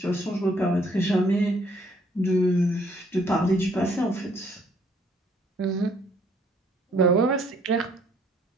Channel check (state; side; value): normal; both; correlation 0.64